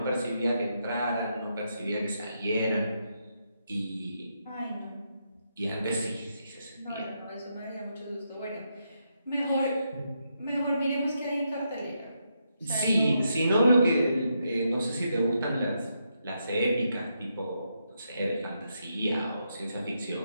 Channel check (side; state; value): both; inverted; correlation -0.81